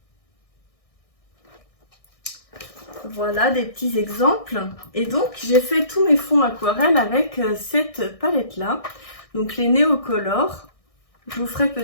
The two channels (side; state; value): right; late; 1.6 ms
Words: Voilà des petits exemples. Et donc j'ai fait tous mes fonds aquarelles avec cette palette là. Donc les Neocolor. Je vous ferai